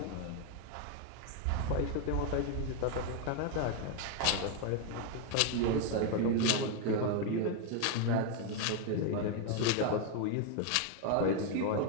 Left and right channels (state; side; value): different; both; correlation 0.01